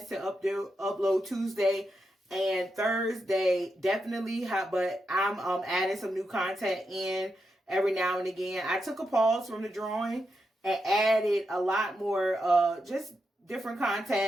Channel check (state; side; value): normal; both; correlation 0.85